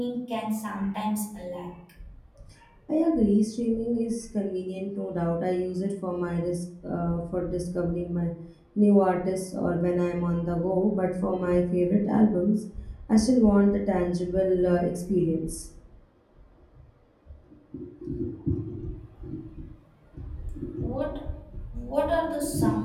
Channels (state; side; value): identical; both; correlation 1.00